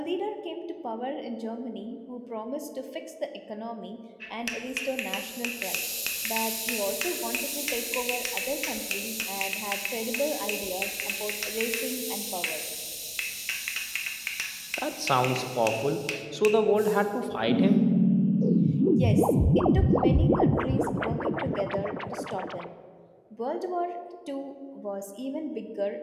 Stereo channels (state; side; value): identical; both; correlation 1.00